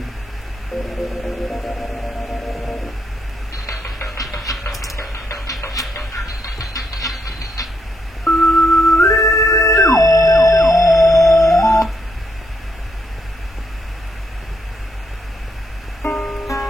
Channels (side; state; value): both; normal; correlation 0.78